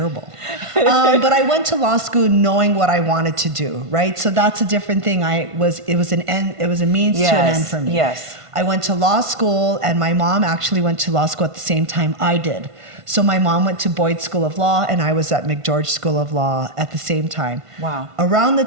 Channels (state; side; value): late; left; 1.5 ms